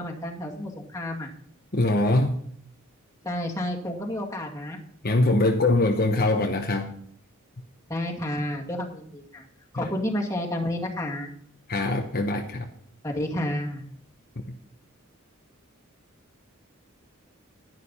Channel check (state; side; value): normal; both; correlation 0.56